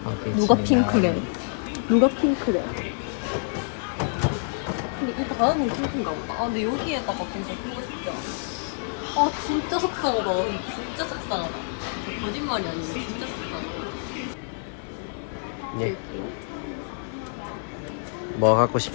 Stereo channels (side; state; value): right; silent; digital silence